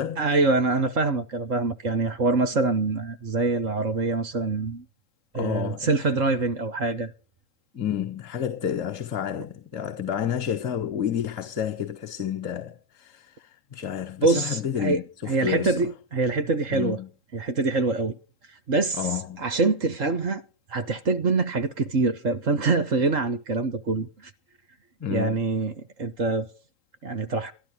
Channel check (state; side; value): late; left; 3.8 ms